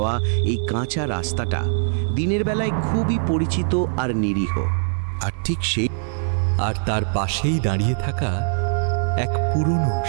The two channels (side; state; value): left; silent; 64 dB below the other